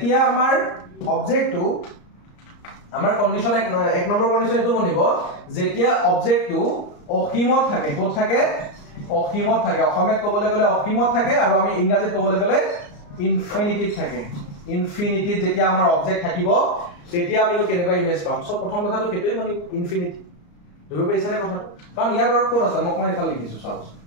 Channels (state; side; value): late; right; 34 ms